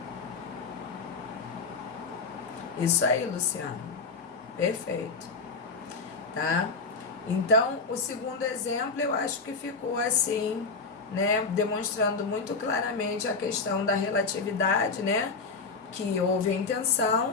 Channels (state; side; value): quieter; right; 4.3 dB